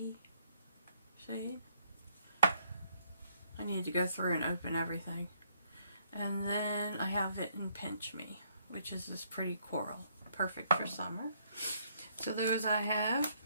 shade? I need to go through and open everything. And then I have it in Pinch Me, which is this pretty coral. Perfect for summer. So those I have.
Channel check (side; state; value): both; inverted; correlation -0.69